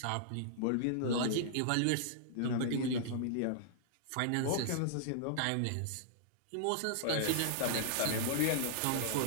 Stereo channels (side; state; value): both; different; correlation -0.01